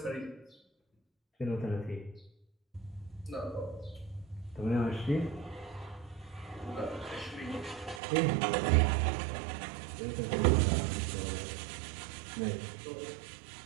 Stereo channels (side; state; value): left; drops out; at 8.0 s